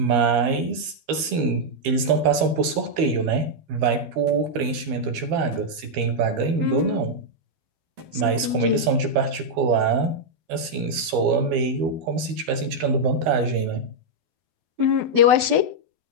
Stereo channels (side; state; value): left; late; 12 ms